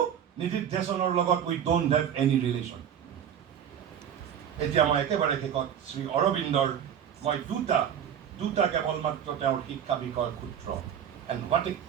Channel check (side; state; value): left; quieter; 9.0 dB